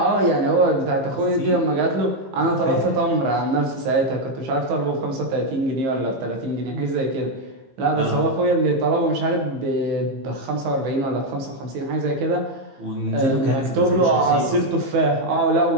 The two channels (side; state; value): left; late; 15 ms